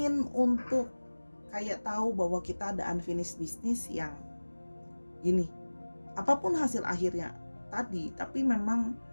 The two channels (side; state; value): both; inverted; correlation -1.00